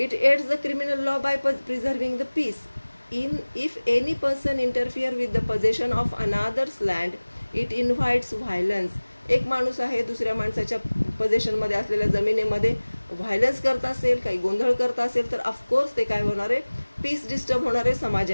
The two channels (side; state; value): both; inverted; correlation -1.00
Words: It aids the criminal law by preserving the peace. If any person interfere with the possession of another's land, it invites violence. एक माणूस आहे दुसऱ्या माणसाच्या पोझिशनमध्ये असलेल्या जमिनीमध्ये व्हायलन्स करत असेल, काही गोंधळ करत असेल तर ऑफकोर्स ते काय होणार आहे, पीस डिस्टर्ब होणार आहे